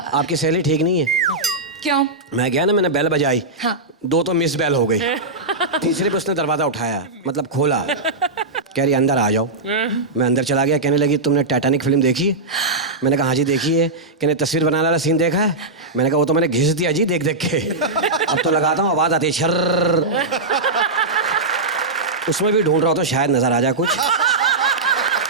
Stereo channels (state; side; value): quieter; left; 3.2 dB